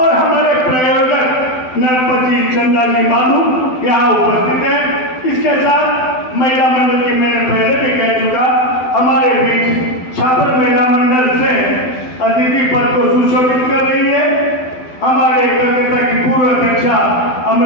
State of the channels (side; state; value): right; late; 12 ms